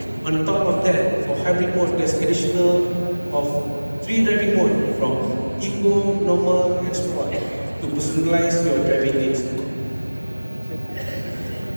On top of that, for hybrid mode, there's additional of 3 driving modes from Eco, Normal, and Sport to personalize your driving needs.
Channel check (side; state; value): both; inverted; correlation -1.00